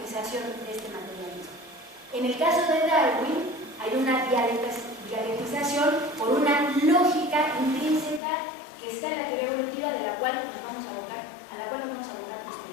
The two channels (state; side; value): drops out; right; at 8.2 s